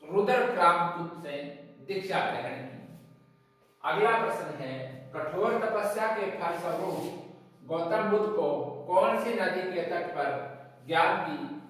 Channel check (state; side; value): identical; both; correlation 1.00